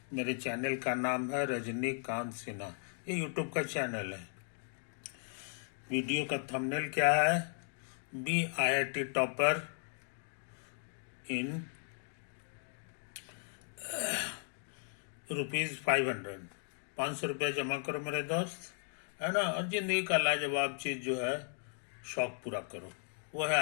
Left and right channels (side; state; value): right; silent; 54 dB below the other